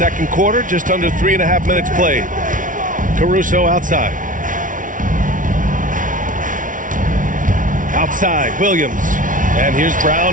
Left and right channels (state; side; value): late; left; 0.38 ms